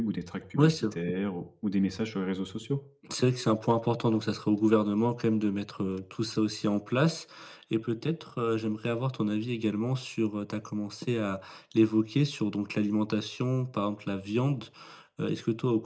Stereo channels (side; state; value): both; identical; correlation 1.00